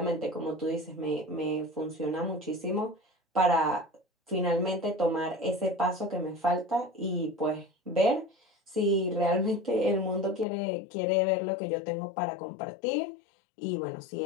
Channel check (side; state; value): right; drops out; at 10.5 s